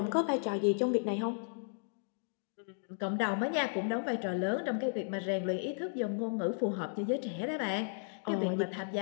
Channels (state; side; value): silent; right; digital silence